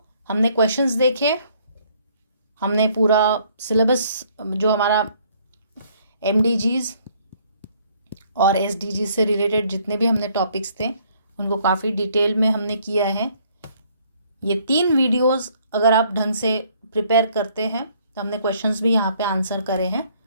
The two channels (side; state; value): both; inverted; correlation -0.63